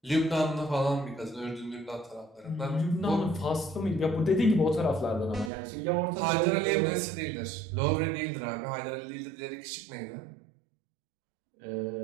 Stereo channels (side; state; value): left; drops out; at 5.5 s